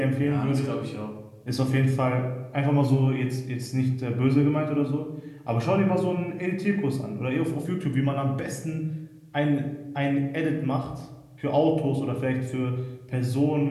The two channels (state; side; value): identical; both; correlation 1.00